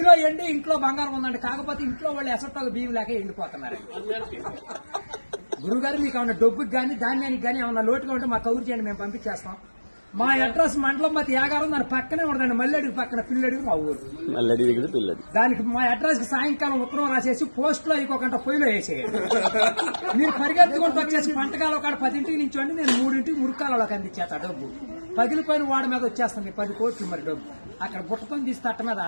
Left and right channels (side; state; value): both; inverted; correlation -1.00